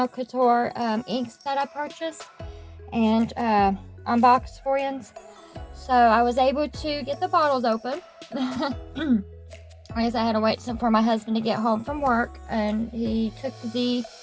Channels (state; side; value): identical; both; correlation 1.00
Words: inks that I purchased and unboxed for you. So I was able to get the bottles open. I guess I had to wait for my husband to get home from work, and he took the